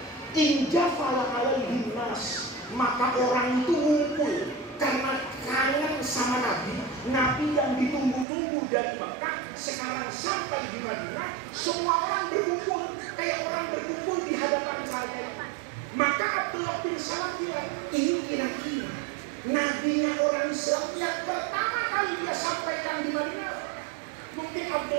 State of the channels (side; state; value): left; drops out; at 8.2 s